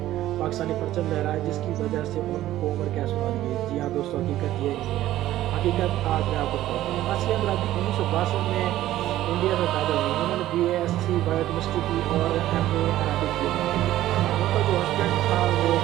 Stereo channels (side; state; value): left; quieter; 14.1 dB